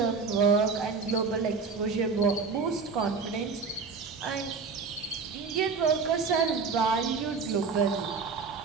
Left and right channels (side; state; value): left; quieter; 5.0 dB